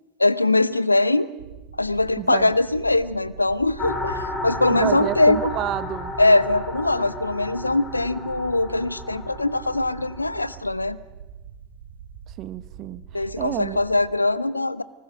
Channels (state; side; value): inverted; both; correlation -0.84